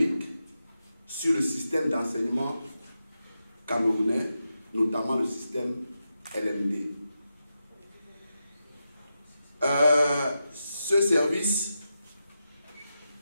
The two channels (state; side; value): inverted; both; correlation -0.88